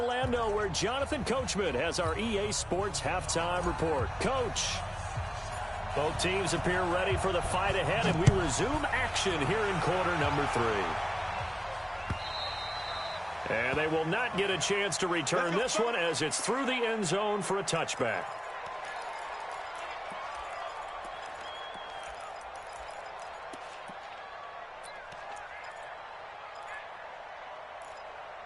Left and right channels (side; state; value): both; identical; correlation 1.00